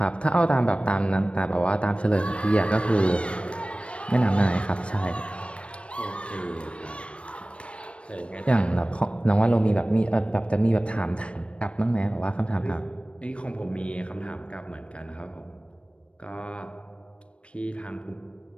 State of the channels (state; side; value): late; right; 0.060 ms